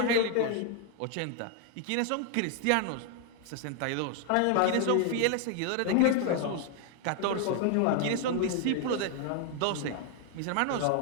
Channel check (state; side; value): different; both; correlation 0.00